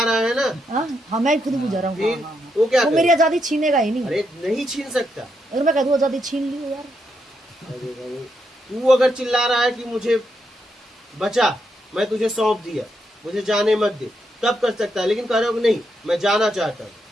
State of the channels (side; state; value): both; normal; correlation 0.80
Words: रहा है ना। हाँ, मैं खुद बुझा रहा हूँ। वो क्या वो मेरी आजादी छीनेगा ही नहीं। अरे नहीं छीन सकता। अगर मैं कह दूं आजादी छीन ली यार, तू अगर चिल्ला रहा है कि मुझे बचा, मैं तुझे सौंप दिया, मुझे जाने मत दे, तब कर सकता है। लेकिन कह रहे हो नहीं मैं जाना चाहता हूँ,